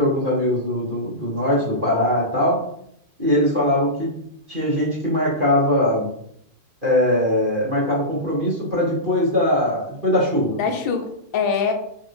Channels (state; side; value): late; left; 2.5 ms